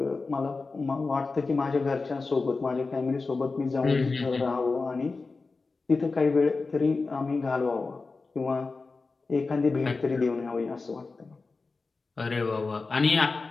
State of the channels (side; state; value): right; quieter; 4.0 dB